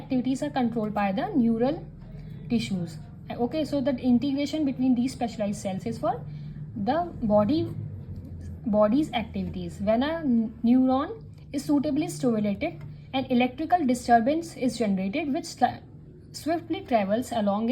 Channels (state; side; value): identical; both; correlation 1.00